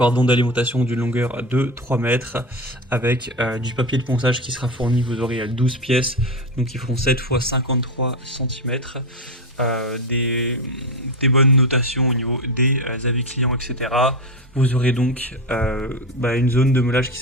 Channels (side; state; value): both; normal; correlation 0.18